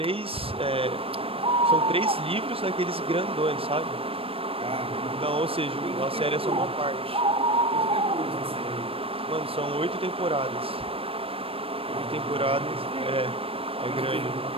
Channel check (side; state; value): left; late; 0.27 ms